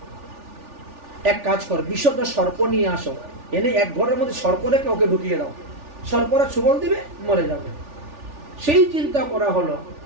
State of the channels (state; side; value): late; left; 3.4 ms